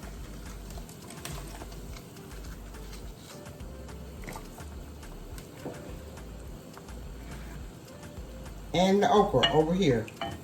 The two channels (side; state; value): both; identical; correlation 1.00